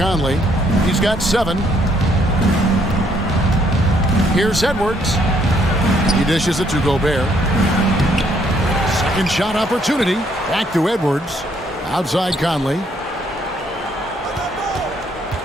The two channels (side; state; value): both; normal; correlation 0.68